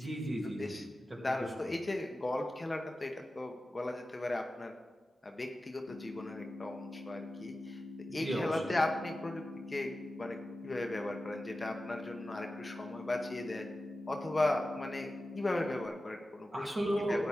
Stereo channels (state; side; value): normal; both; correlation 0.94